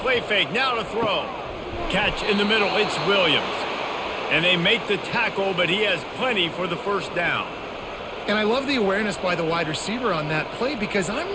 fake, now to throw. Catch in the middle, it's Williams. And they make the tackle, but he has plenty for the first down. And I love the awareness by the wide receiver on that play because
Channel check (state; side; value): identical; both; correlation 1.00